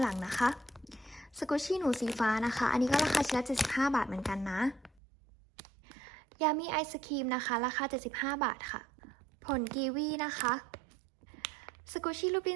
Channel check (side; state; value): left; drops out; at 4.9 s